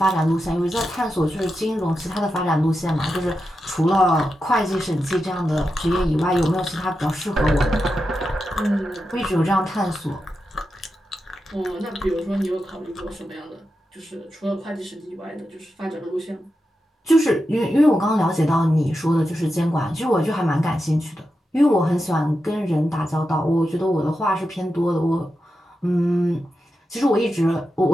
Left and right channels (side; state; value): both; normal; correlation 0.89